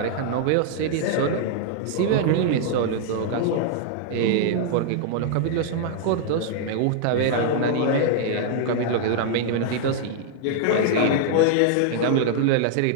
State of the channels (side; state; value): both; different; correlation -0.01